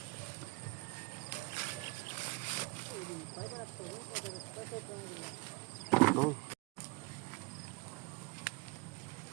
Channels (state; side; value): quieter; left; 25.5 dB